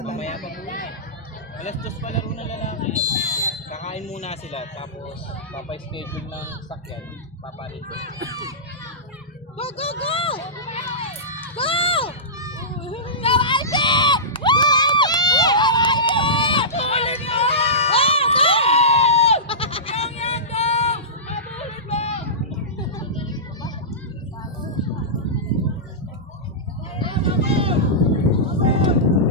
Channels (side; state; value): both; normal; correlation -0.18